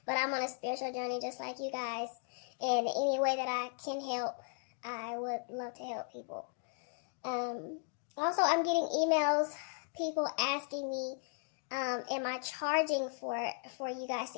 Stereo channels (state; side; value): silent; right; 53 dB below the other